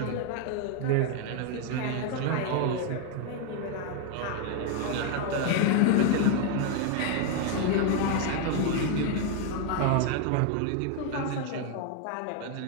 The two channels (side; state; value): both; different; correlation 0.01